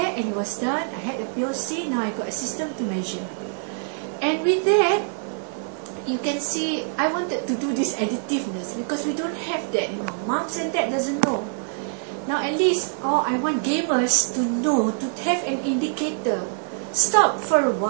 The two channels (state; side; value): silent; left; digital silence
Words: and it was done. I had a POC, now I got a system to measure. And with that, you can see I wanted to do this additiveness because we don't have that, you know. Moms and dad doesn't know. Now at least, I want gamers to know, to have an indicator. Stop for a